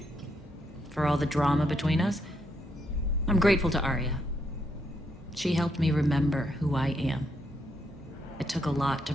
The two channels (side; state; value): both; normal; correlation 0.77